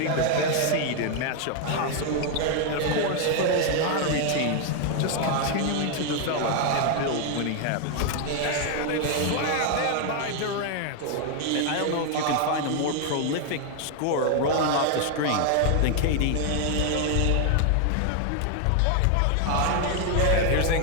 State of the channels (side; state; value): both; different; correlation 0.00